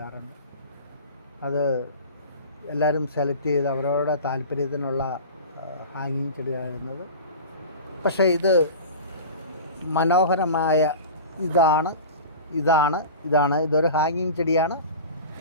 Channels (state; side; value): inverted; both; correlation -0.35